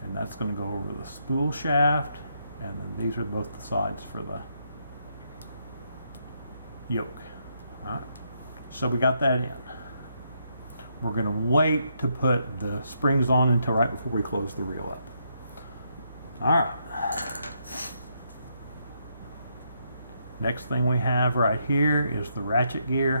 And that's going to go over the spool shaft, and then these are both the sides for the yoke. All right, so we got that in. We're going to wait to put the springs on until right before we close the reel up. All right. Next thing we have right here is the ratchet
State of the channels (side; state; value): both; inverted; correlation -0.77